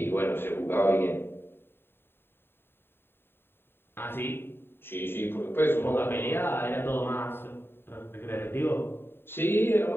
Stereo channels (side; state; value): right; late; 0.11 ms